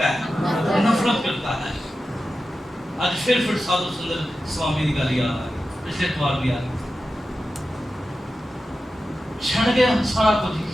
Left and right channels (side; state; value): both; normal; correlation 0.92